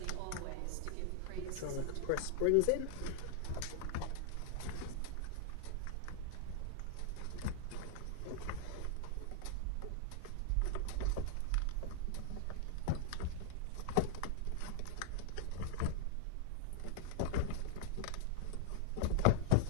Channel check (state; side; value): different; both; correlation 0.00